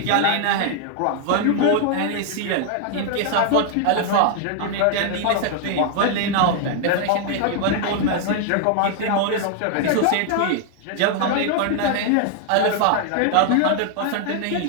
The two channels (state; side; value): different; both; correlation 0.00